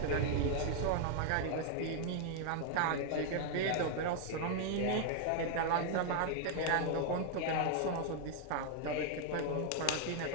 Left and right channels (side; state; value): both; different; correlation 0.00